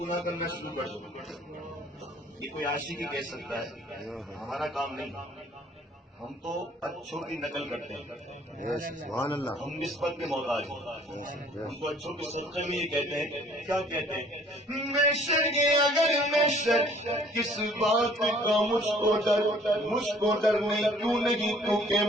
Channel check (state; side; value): normal; both; correlation 0.56